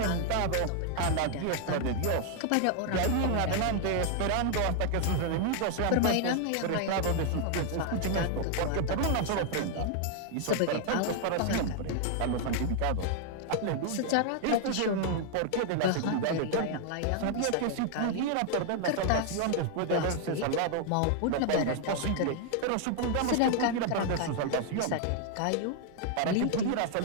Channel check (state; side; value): different; both; correlation 0.00